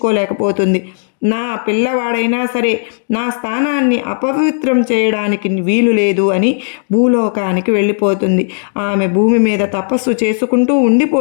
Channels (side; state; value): right; silent; digital silence